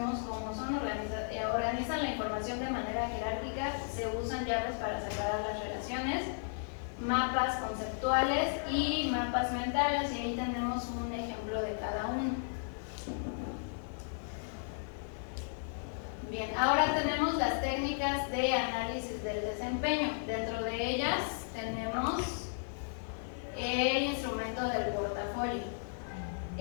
como son, organizan la información de manera jerárquica, se usan llaves para separar las relaciones, mapas conceptuales y mapas mentales, y ahí tenemos un ejemplo de cada uno. Bien, ahora tenemos las técnicas de análisis del desempeño. Dentro de ellas tenemos el instrumento del portafolio.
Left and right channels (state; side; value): silent; right; 55 dB below the other